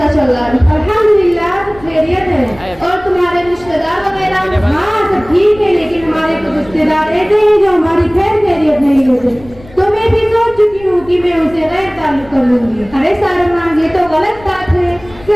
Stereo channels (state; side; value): noise; left; rumble, 21 dB below the sound